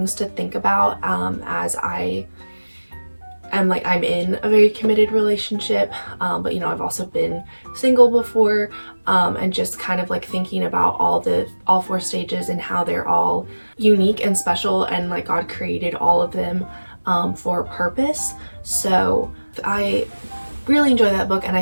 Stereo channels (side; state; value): both; inverted; correlation -1.00